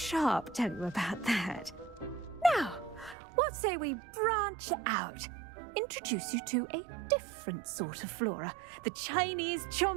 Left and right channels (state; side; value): drops out; left; at 3.2 s